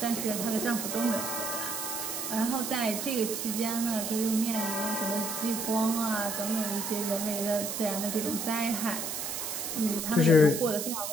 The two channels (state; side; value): noise; right; hiss, 4 dB below the sound